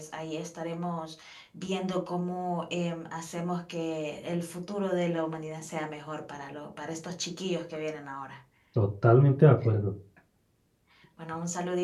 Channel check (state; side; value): identical; both; correlation 1.00